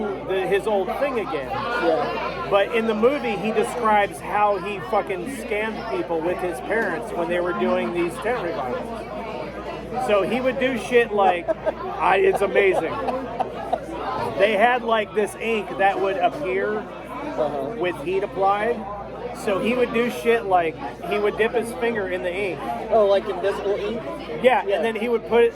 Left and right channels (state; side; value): identical; both; correlation 1.00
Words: his old thing again. Yeah. But in the movie, he describes how he fucking scammed people with his parents when they were doing these tent revivals. So he would do shit like, it's amazing. They had this ink that would appear with heat applied. So he would do shit like he would dip his finger in the ink. Oh, like invisible ink? Yeah, and then he would put it